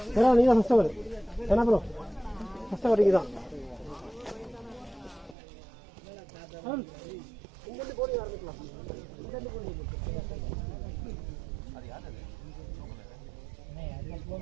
ஏன்னா நீங்கள் தான் ஃபஸ்ட்டு வரு என்ன ப்ரோ ஃபஸ்ட்டு வரைக்கும் தான் இங்கிருந்து போடி ஆரம்பிக்கலாம் இங்கிருந்து போடி அது யார் அது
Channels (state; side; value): drops out; left; at 5.4 s